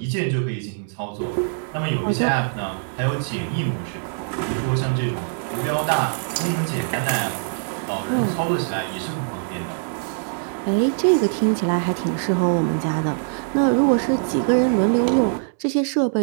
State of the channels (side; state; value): left; silent; 64 dB below the other